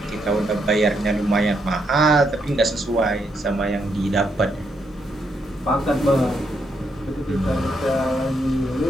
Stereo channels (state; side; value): normal; both; correlation 0.77